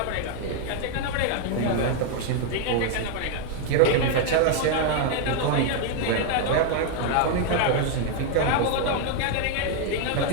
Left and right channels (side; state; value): both; different; correlation 0.00